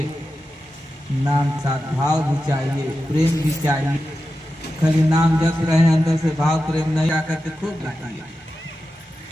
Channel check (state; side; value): normal; both; correlation 0.91